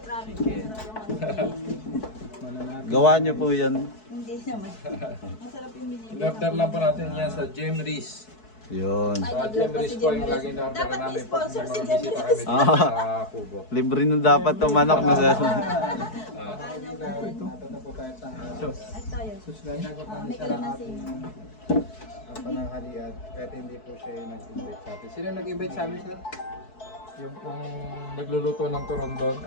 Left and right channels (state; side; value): late; right; 4.6 ms